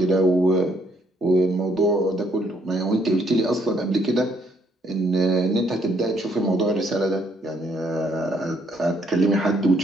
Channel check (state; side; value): normal; both; correlation 0.69